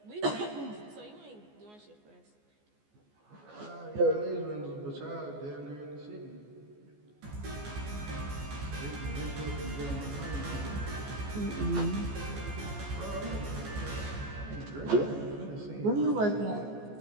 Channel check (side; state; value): left; late; 14 ms